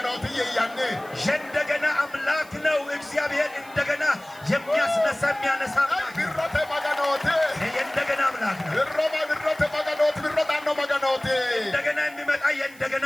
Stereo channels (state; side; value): noise; right; hiss, 23 dB below the sound